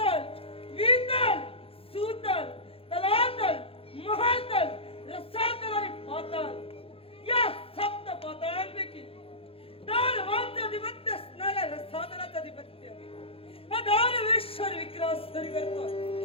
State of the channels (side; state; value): right; late; 0.27 ms